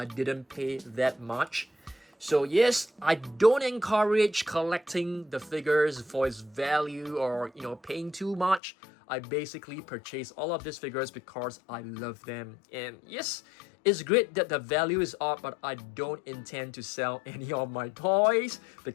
didn't pay that much. So yes, I don't encourage collecting the figures for its value or paying too much. I basically purchased all of these figures because I love them. And yes, it's great that the value is up, but I don't intend to sell any of my toys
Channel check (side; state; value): right; drops out; at 8.6 s